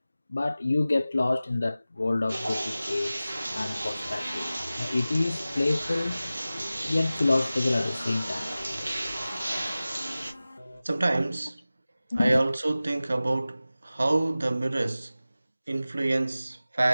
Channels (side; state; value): both; inverted; correlation -0.96